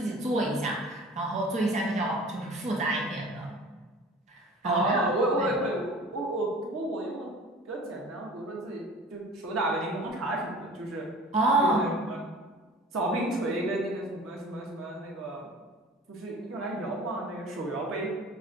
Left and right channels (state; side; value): normal; both; correlation 0.43